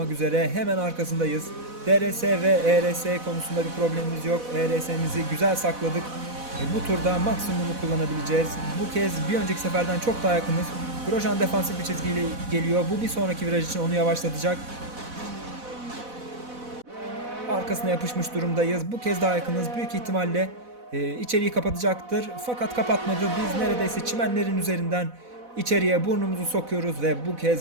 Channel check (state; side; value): late; left; 4.1 ms